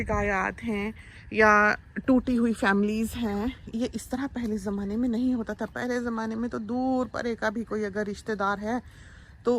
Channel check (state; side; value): identical; both; correlation 1.00